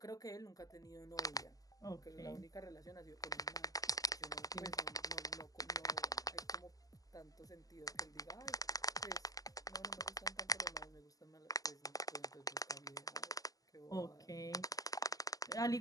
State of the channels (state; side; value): late; right; 0.17 ms